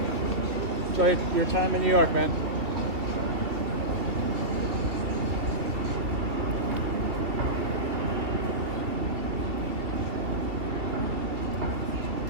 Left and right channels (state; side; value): late; left; 2.6 ms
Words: Enjoy your time in New York, man.